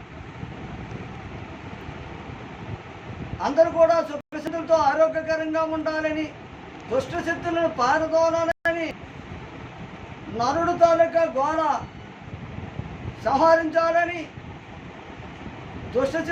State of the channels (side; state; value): both; identical; correlation 1.00